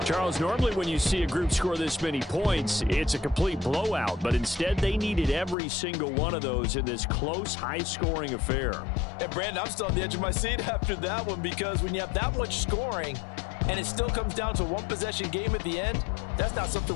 Charles, normally when you see a group score this many points, it's a complete blowout. But instead, they needed every single one of those in this close, high-scoring affair. And, Brandon, I'm still on the edge of my seat after that one because when you have that much scoring and it still comes down to a one-possession game at the end, that's not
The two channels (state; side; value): drops out; right; at 5.6 s